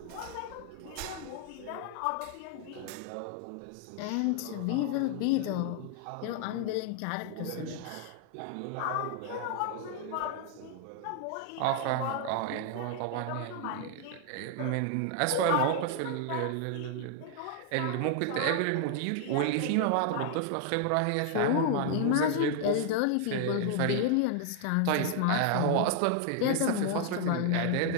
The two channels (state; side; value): different; both; correlation 0.00